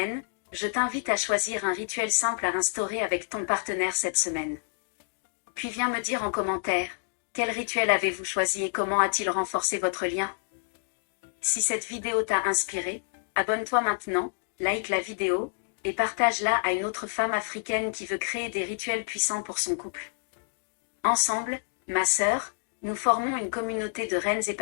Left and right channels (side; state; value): right; silent; digital silence